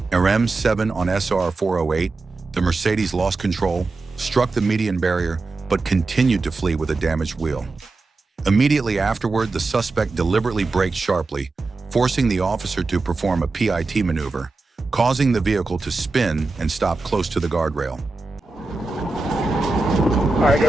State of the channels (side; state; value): left; quieter; 3.5 dB